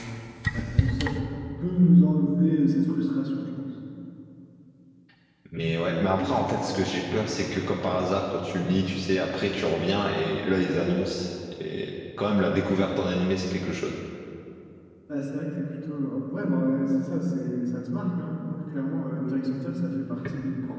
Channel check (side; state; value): both; identical; correlation 1.00